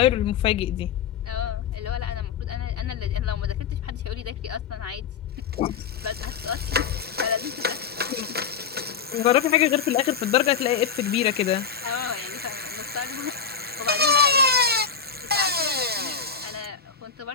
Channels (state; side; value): quieter; right; 6.7 dB